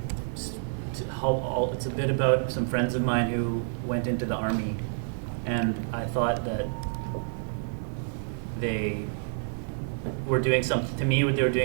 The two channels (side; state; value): left; silent; digital silence